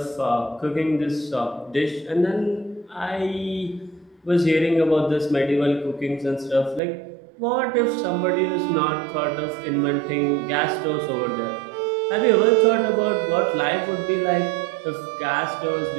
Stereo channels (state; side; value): drops out; left; at 6.8 s